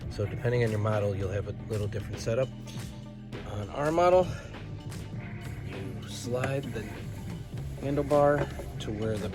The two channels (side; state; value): both; identical; correlation 1.00